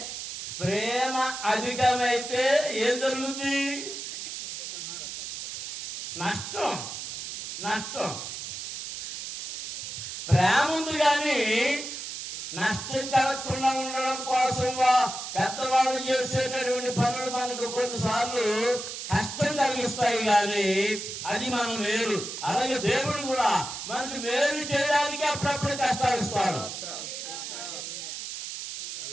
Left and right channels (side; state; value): right; noise; hiss, 7 dB below the sound